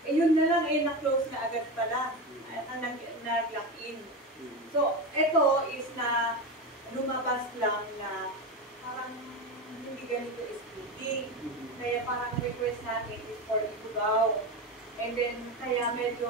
Eh yun na lang, na-close na agad pala, nag-lock in. So, ito is na lumabas lang na parang hindi ganito is speaking. Kaya parang request natin is for Ifugao. And then, kaya medyo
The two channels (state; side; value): normal; both; correlation 0.20